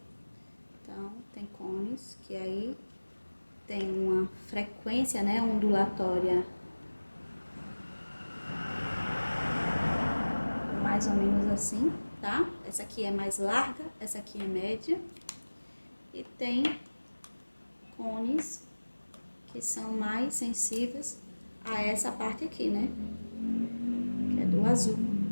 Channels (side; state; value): both; inverted; correlation -1.00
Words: Então, tem cones que aí tem uma frequência, né, ondulatória mais ou menos assim, tá? Essa aqui é mais larga, essa aqui é média. E tem cones que são mais sensíveis a essa parte aqui, né? Que é do azul.